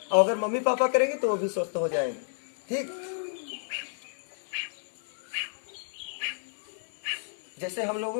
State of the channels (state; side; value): silent; right; digital silence